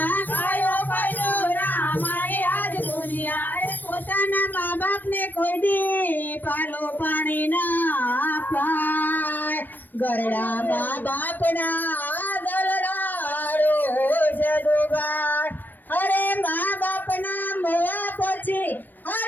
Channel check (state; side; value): late; right; 0.091 ms